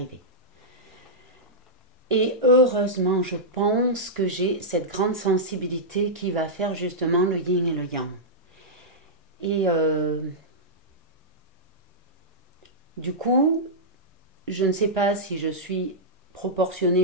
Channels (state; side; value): normal; both; correlation -0.10